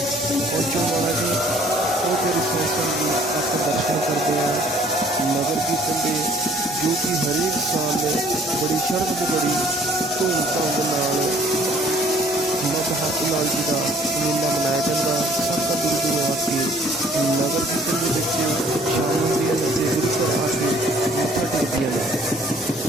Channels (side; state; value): both; normal; correlation 0.57